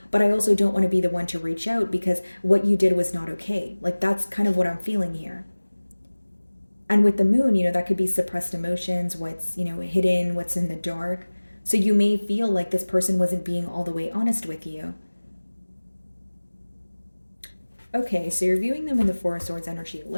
but I also don't want to be the one to reach out because what you did was not okay. Like, that's kind of what I'm feeling here. And with the Moon, that could be suppressed emotions, what's, hidden, what's in the dark. So you may feel like this person wasn't being all the way honest with you. Okay, so you're viewing them in the Four of Swords energy.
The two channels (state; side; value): inverted; both; correlation -1.00